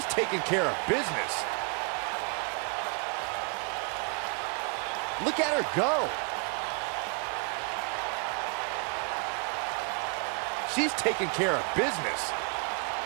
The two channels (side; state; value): left; quieter; 38.2 dB